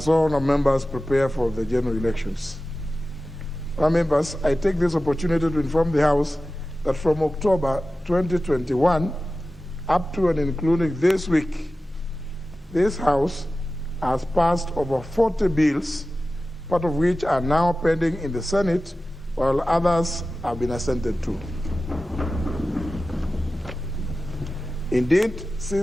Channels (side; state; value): both; normal; correlation 0.95